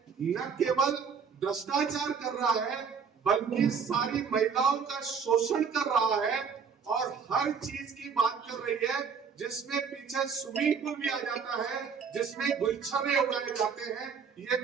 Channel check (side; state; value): left; quieter; 6.2 dB